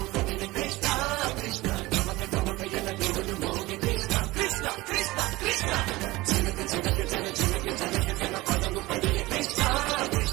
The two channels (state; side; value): quieter; left; 20.1 dB